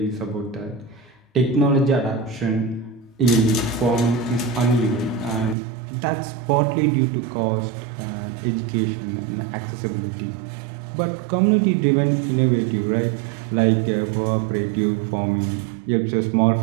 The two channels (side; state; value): left; drops out; at 5.6 s